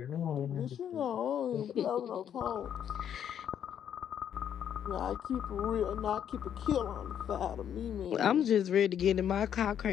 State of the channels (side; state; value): right; quieter; 9.3 dB